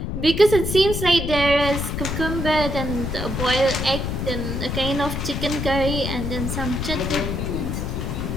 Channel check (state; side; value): noise; left; rumble, 3 dB below the sound